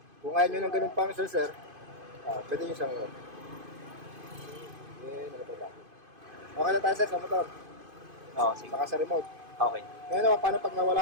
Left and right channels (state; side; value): late; left; 2.5 ms